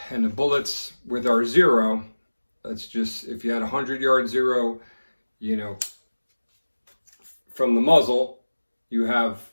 and the bullets with our zero, that's just, if you had 100-yard zero, you know, from the muzzle, you have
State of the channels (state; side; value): inverted; both; correlation -1.00